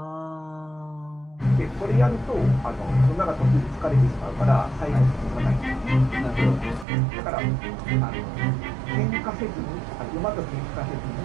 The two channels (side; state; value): left; drops out; at 6.9 s